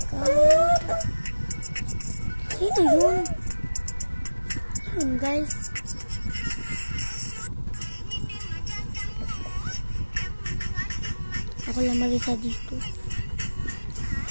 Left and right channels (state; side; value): inverted; both; correlation -1.00